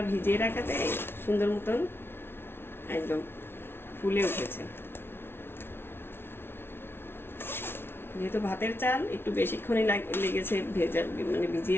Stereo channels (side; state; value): right; late; 0.11 ms